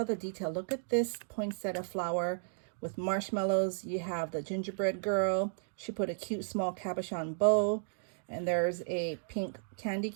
the detail. Look at this poinsettia flower with marshmallows. You have the gingerbread girl. She put a cute small cabochon bow. And there's a pink candy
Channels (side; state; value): left; silent; digital silence